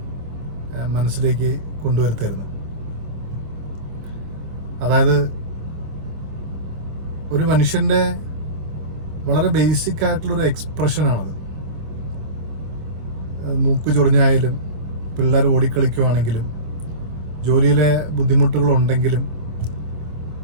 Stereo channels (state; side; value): late; left; 25 ms